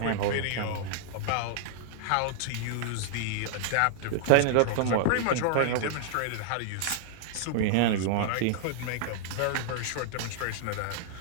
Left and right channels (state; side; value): different; both; correlation -0.01